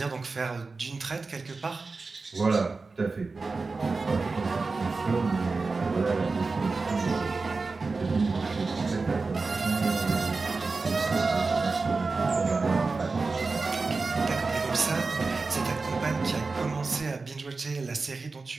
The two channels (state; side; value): quieter; left; 4.0 dB